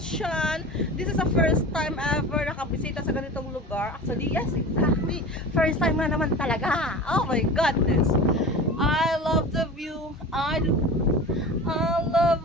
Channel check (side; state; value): both; normal; correlation 0.34